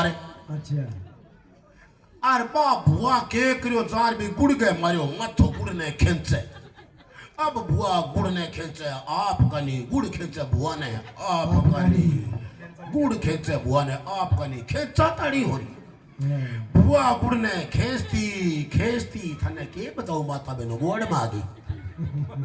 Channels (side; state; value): both; identical; correlation 1.00